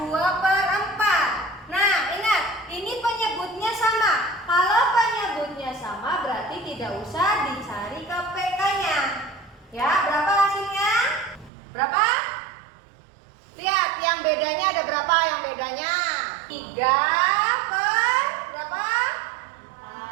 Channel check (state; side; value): drops out; left; at 11.5 s